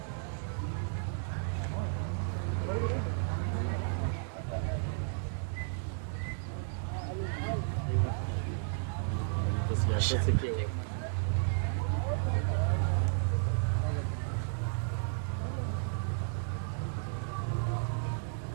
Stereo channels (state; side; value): silent; left; digital silence